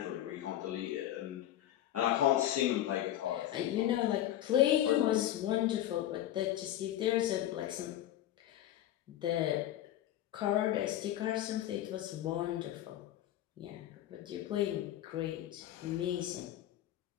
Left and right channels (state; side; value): quieter; right; 12.7 dB